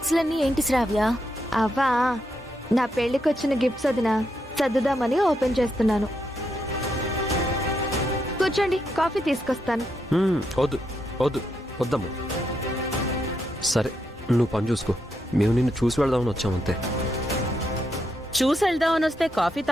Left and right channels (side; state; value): both; normal; correlation 0.81